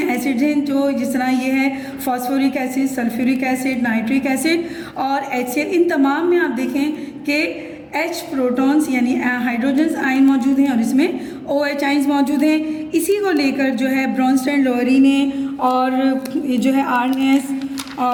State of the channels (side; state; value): both; identical; correlation 1.00